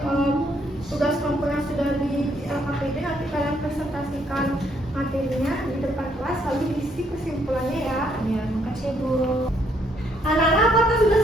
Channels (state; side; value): normal; both; correlation 0.70